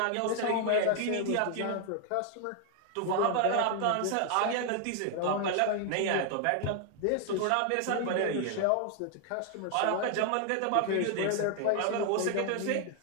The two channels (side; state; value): both; different; correlation 0.00